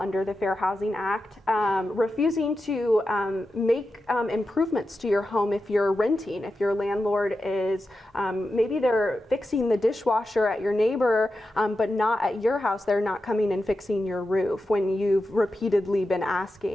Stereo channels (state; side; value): normal; both; correlation 0.90